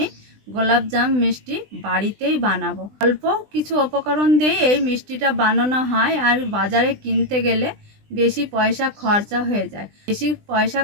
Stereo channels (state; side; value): late; left; 20 ms